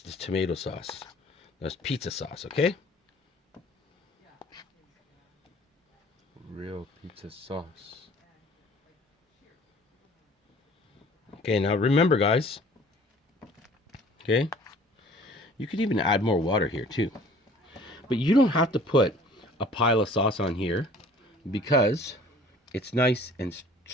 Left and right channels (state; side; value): normal; both; correlation 0.51